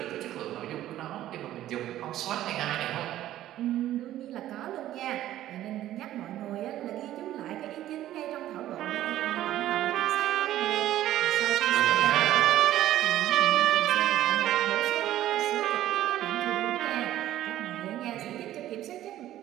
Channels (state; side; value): quieter; left; 13.4 dB